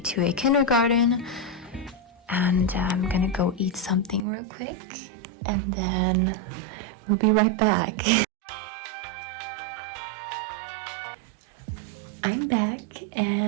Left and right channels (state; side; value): drops out; left; at 4.2 s